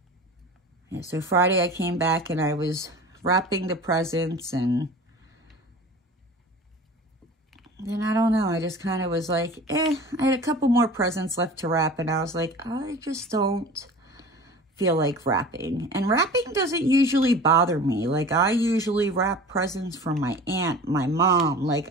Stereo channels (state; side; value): normal; both; correlation 0.39